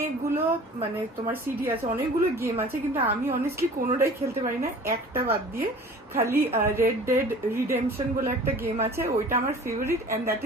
মানে তোমার সিডি আছে, অনেকগুলো গেম আছে, কিন্তু আমি অনেস্টলি কোনোটাই খেলতে পারি না, একটা বাদ দিয়ে। খালি রেড ডেড রিডেম্পশন বলে একটা গেম আছে, ওইটা আমার favourite, and that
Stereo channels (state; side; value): normal; both; correlation 0.44